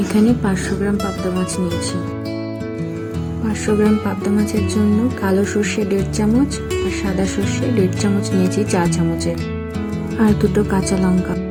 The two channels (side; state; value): both; identical; correlation 1.00